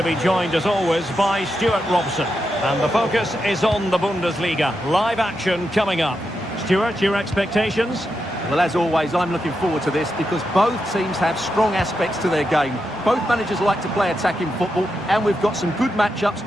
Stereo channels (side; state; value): both; normal; correlation 0.86